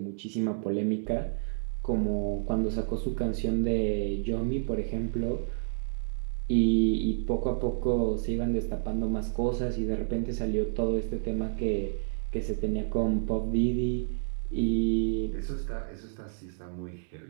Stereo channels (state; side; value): silent; left; digital silence